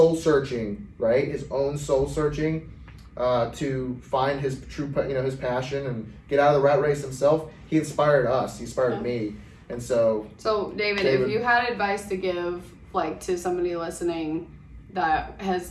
searching, right? His own soul searching to find his true, his passion and get out of the rat race himself. He inspired us, he inspired me. And so David, if you had advice to give to somebody listening that has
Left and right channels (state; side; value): identical; both; correlation 1.00